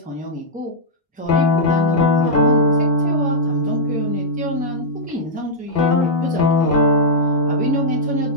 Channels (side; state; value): both; normal; correlation -0.07